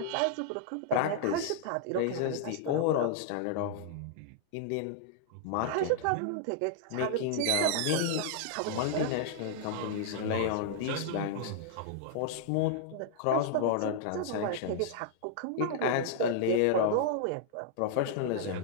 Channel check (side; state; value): both; different; correlation -0.01